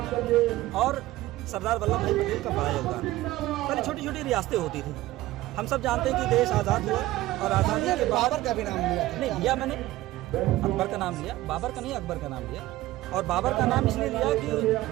और सरदार वल्लभ भाई पटेल का बड़ा योगदान है। पहले छोटी छोटी रियासतें होती थी, हम सब जानते हैं कि देश आज़ाद हुआ और आज़ादी के बाद बाबर का भी नाम लिया नहीं लिया मैंने, अकबर का नाम लिया, बाबर का नहीं अकबर का नाम लिया। और बाबर का नाम इसलिए लिया कि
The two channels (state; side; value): quieter; left; 16.9 dB